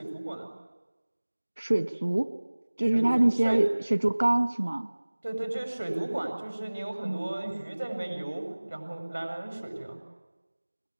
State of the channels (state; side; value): inverted; both; correlation -1.00